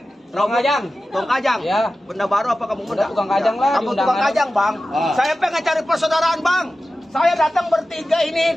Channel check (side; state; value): both; normal; correlation 0.94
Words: Kajang. Tukang Kajang. Ya. Benda baru apa kampung muda? Tukang Kajang lah, Kampung diundangan. Tukang Kajang, Bang. Saya pengen cari persaudaraan, Bang. Saya datang bertiga